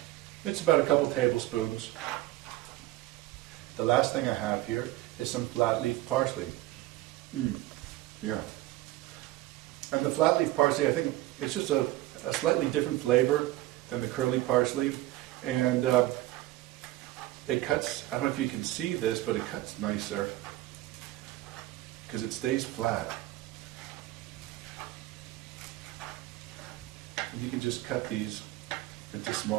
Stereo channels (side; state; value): left; quieter; 16.8 dB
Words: It's about a couple tablespoons. The last thing I have here is some flat leaf parsley. Yeah. And the flat leaf parsley, I think it's just a slightly different flavor than the curly parsley. And it cuts, I don't know if you can see this, but it cuts nicer because it stays flat. And you can just cut these into